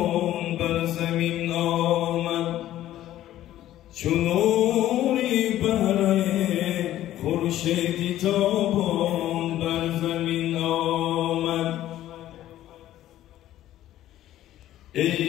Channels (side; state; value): right; quieter; 13.4 dB